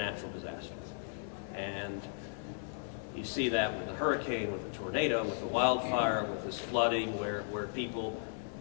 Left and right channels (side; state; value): right; silent; 54 dB below the other